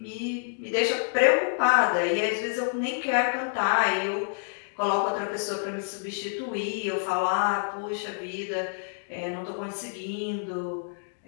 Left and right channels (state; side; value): silent; right; digital silence